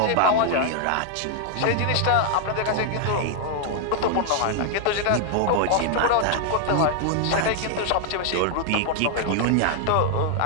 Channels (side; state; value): both; different; correlation 0.00